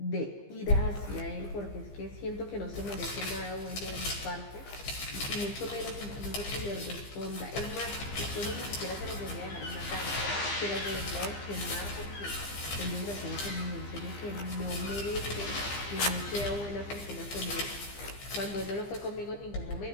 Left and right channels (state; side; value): late; right; 15 ms